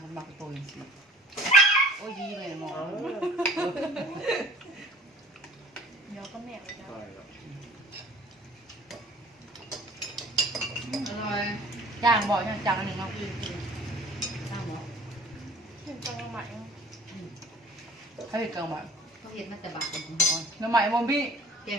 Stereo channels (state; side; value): normal; both; correlation 0.47